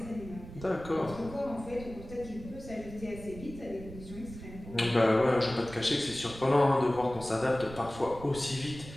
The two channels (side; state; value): right; noise; rumble, 14 dB below the sound